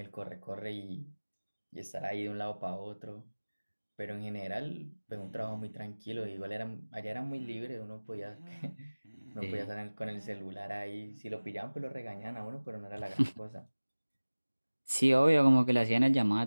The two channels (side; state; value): both; inverted; correlation -1.00